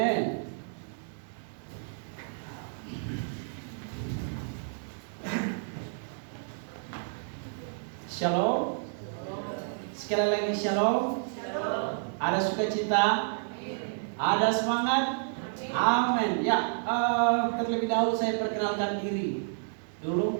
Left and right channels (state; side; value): silent; left; digital silence